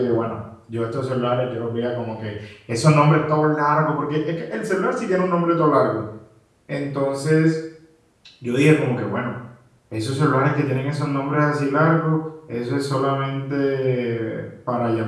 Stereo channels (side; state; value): both; identical; correlation 1.00